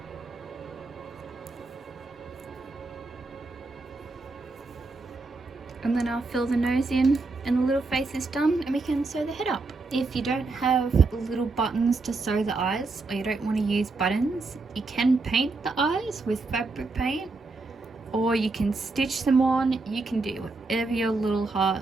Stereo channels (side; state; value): left; quieter; 3.6 dB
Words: And then I'll fill the nose in and the little face is done, and we can sew the head up. If you don't have little buttons to sew the eyes, or you don't want to use buttons, you can paint the eyes with fabric paint, or you can stitch them on. You can do whatever your little